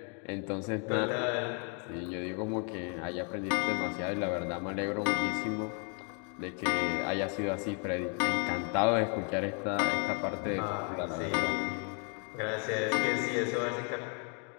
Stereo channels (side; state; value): right; quieter; 38.0 dB